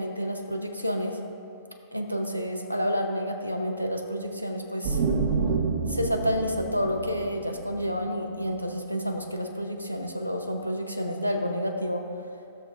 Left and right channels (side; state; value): both; inverted; correlation -0.71